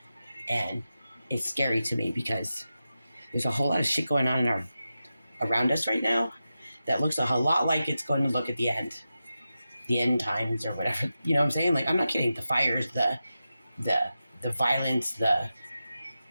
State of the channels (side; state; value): both; inverted; correlation -0.92